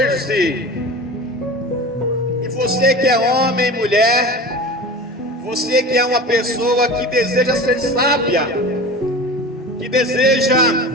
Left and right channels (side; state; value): both; normal; correlation 0.33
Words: E você que é homem, mulher, você que é uma pessoa que deseja ser sábia, que deseja